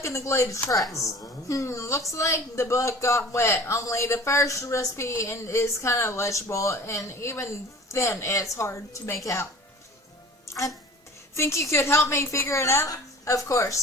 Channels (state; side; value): normal; both; correlation 0.44